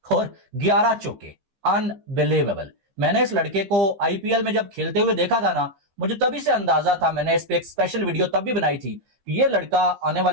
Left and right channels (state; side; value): late; left; 15 ms